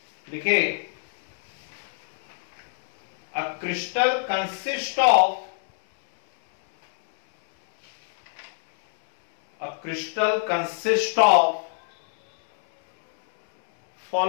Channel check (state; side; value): silent; right; 63 dB below the other